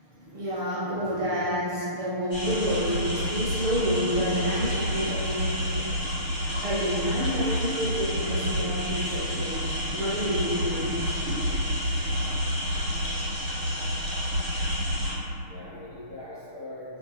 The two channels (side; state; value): left; late; 6.6 ms